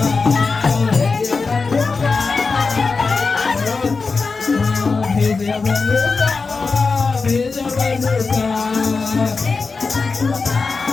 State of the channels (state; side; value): quieter; right; 4.4 dB